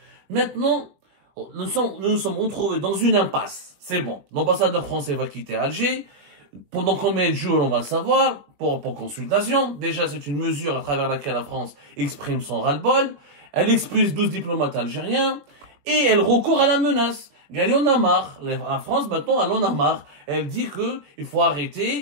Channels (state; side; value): late; left; 20 ms